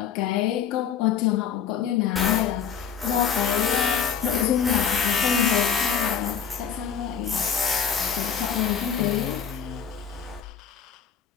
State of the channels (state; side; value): quieter; right; 7.5 dB